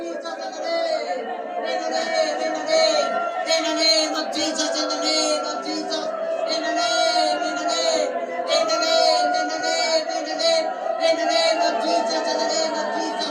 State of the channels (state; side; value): identical; both; correlation 1.00